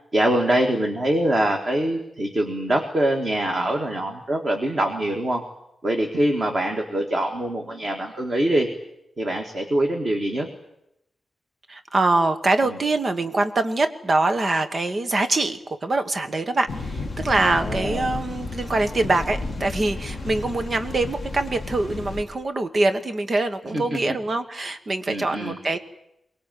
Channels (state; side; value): normal; both; correlation 0.90